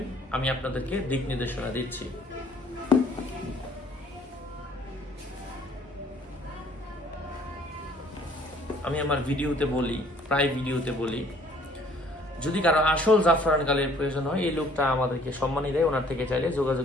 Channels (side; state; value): both; normal; correlation 0.58